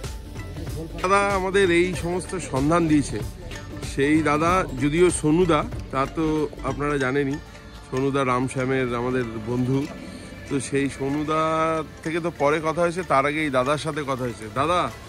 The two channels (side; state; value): both; identical; correlation 1.00